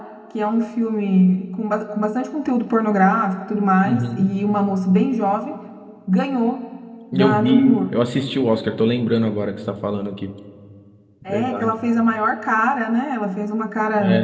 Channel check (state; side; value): identical; both; correlation 1.00